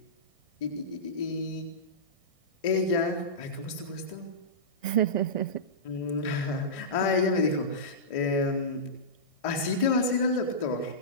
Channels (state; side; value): late; right; 1.6 ms